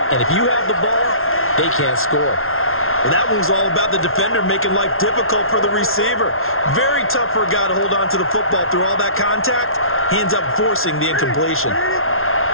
And if you have the ball, they can't score. Well, that one was all about the defender making life difficult for the receiver. Very tough for a guy to hold on to the football through all that contact. He ends up forcing the incompletion.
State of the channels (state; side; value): late; right; 0.61 ms